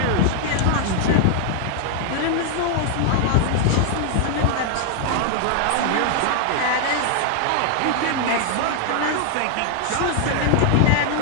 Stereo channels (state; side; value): different; both; correlation 0.00